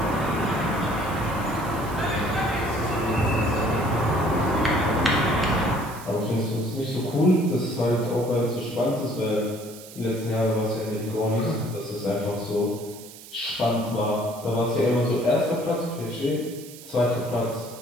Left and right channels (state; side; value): noise; right; hiss, 17 dB below the sound